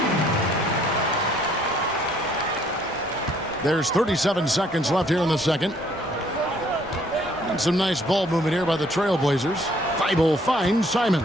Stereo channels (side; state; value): both; normal; correlation 0.63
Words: There's 37 seconds left here in the second. And some nice ball movement here by the Trailblazers. Thibault finds Simons.